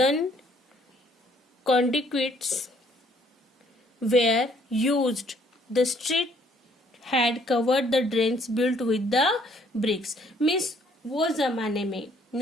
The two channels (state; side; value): normal; both; correlation 0.64